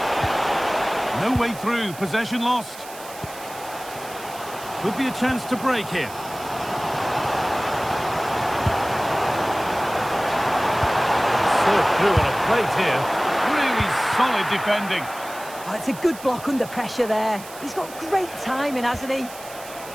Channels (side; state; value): right; noise; hiss, 16 dB below the sound